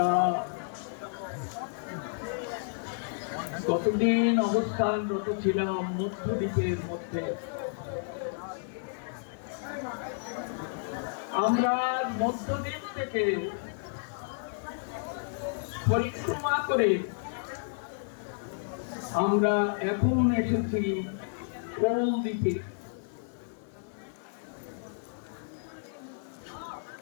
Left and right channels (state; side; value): silent; right; digital silence